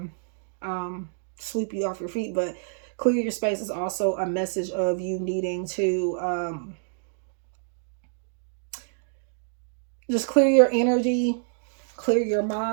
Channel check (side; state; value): left; silent; digital silence